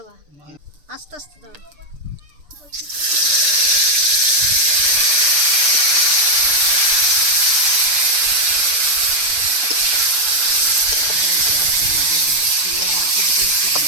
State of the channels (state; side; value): late; left; 6.8 ms